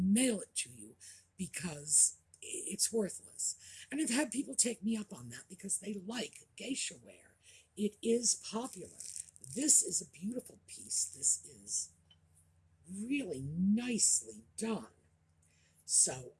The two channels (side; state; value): both; identical; correlation 1.00